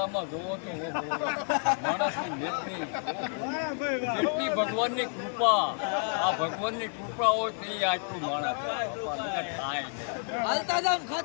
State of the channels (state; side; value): silent; right; 56 dB below the other